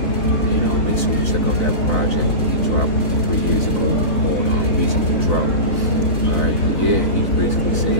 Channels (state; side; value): late; right; 4.1 ms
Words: And make sure you check out that project he dropped 3 years ago called Reasonable Drought. Alright, but yeah, he's basically